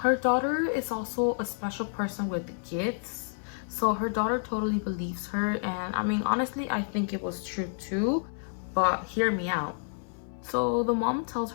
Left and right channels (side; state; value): right; silent; digital silence